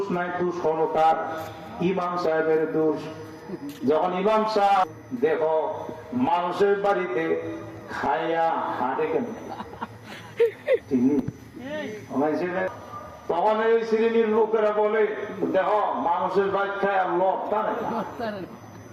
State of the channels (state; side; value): identical; both; correlation 1.00